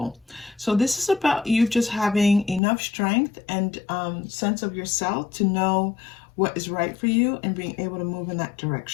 So this is about you just having enough strength and sense of yourself to know what is right for you and being able to move in that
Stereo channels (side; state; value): right; drops out; at 2.6 s